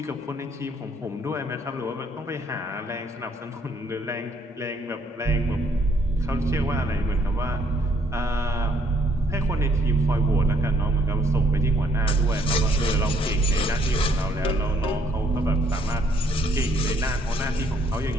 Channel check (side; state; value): both; normal; correlation 0.67